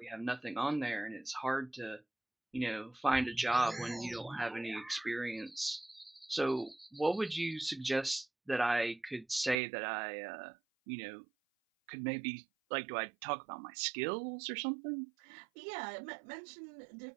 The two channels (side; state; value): left; drops out; at 9.6 s